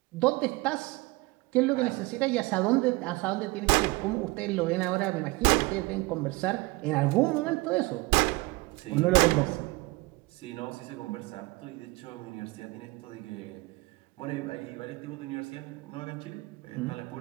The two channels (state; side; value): quieter; left; 23.3 dB